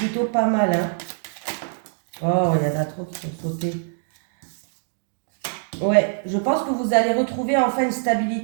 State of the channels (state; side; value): silent; left; digital silence